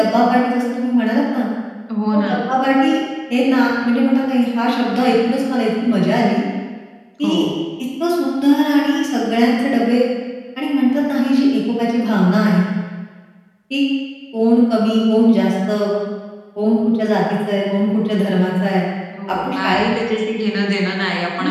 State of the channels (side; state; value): both; identical; correlation 1.00